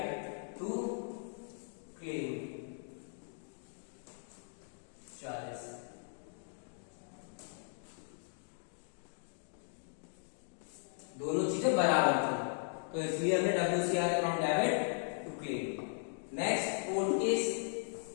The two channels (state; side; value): silent; right; digital silence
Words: टू क्लेम 40। दोनों चीजें बराबर थी, तो इसलिए हमने WCR account debit to claim. Next 4th case,